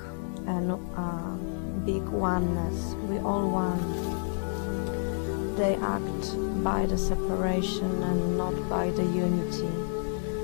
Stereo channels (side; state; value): right; silent; digital silence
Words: and big oneness. We all one. They act by the separation and not by the unity.